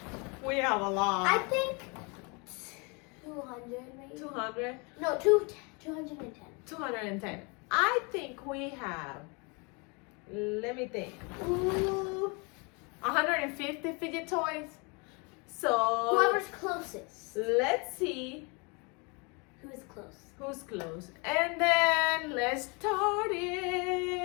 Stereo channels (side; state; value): right; quieter; 31.2 dB